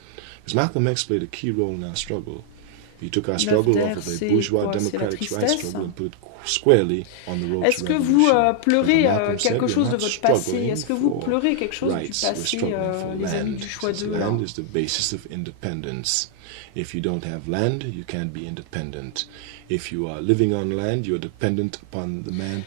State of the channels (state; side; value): different; both; correlation 0.00